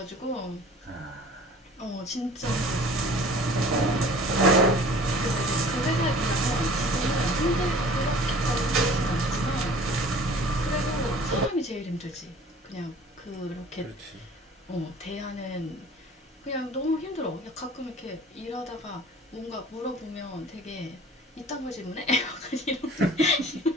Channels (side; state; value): both; normal; correlation 0.47